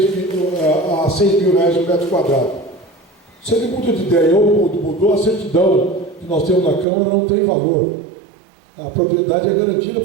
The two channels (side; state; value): left; drops out; at 6.9 s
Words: a 6 mil reais o metro quadrado. Se ele muda de ideia ou mudou, a certidão que nós temos na Câmara não tem valor. A propriedade é garantida